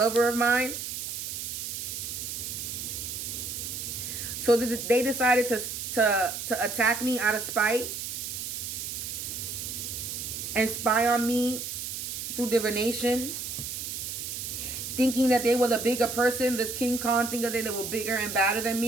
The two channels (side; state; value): right; noise; hiss, 5 dB below the sound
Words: of mine. So they decided to attack me out of spite and spy on me through divination, thinking that they were the bigger person. This King Khan thinking that they were bigger and badder than